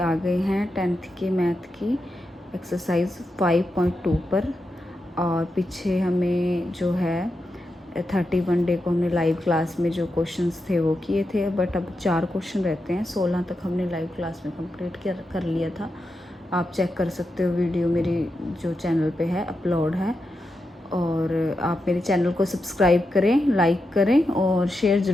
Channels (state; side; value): normal; both; correlation 0.87